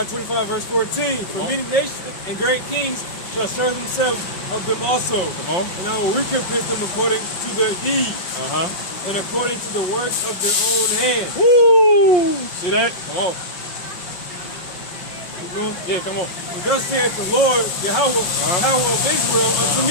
25, verse 14. For many nations and great kings shall serve themselves of them also. Come on. And I will recompense them according to their deeds. And according to the works of their own hands. Woo! See that? Come on. Keep going. Yeah, come on. And thus saith the Lord, Yahweh, power of Israel, unto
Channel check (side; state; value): right; late; 5.3 ms